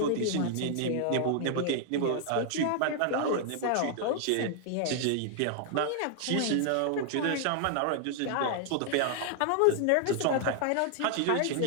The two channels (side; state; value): both; different; correlation 0.00